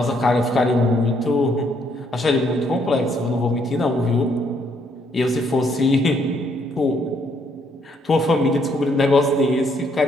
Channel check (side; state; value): both; normal; correlation 0.70